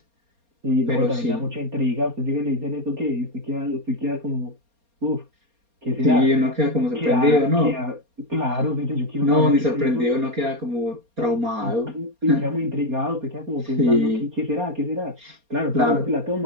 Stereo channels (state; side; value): late; left; 4.3 ms